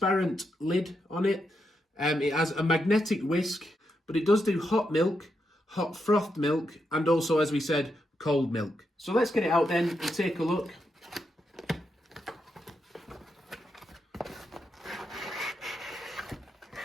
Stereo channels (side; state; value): both; normal; correlation 0.83